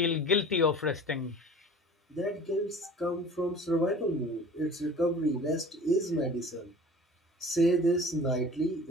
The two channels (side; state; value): both; normal; correlation 0.42